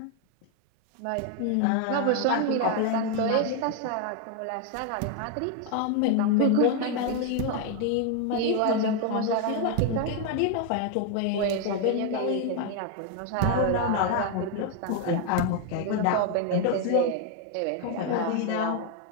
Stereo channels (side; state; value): both; different; correlation 0.00